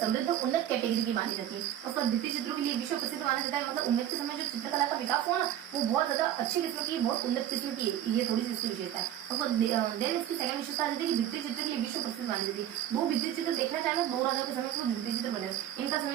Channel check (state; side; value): quieter; left; 11.4 dB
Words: उन्नत कैटेगरी की मानी जाती है। उसका भित्ति चित्रों के लिए विश्व प्रसिद्ध माना जाता है। मतलब उम्मेद के समय जो चित्रकला का विकास हुआ ना, वो बहुत ज्यादा अच्छी किस्म की, बहुत उन्नत किस्म की है। ये थोड़ी सी इसकी विशेषता है। उसको देन इसकी सेकंड विशेषता है कि भित्ति चित्र के लिए विश्व प्रसिद्ध मानी जाती है। वो भित्ति चित्र देखना चाहे 2 राजाओं के समय के भित्ति चित्र बने, इनका